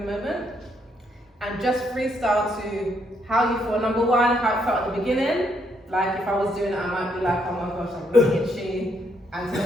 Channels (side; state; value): both; normal; correlation 0.74